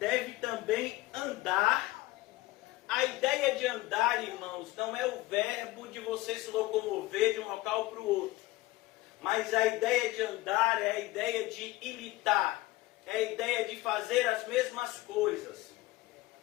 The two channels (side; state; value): right; quieter; 18.7 dB